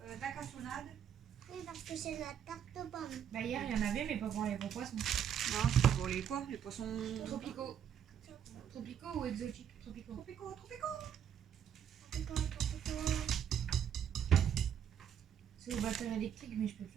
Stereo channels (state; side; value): quieter; left; 8.9 dB